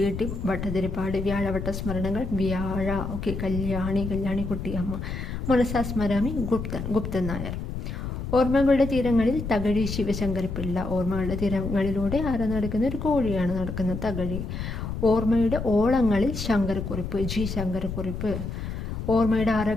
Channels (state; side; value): noise; left; rumble, 5 dB below the sound